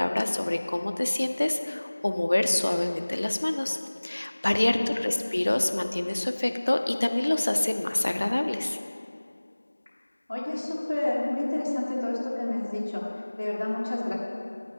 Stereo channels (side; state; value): both; inverted; correlation -1.00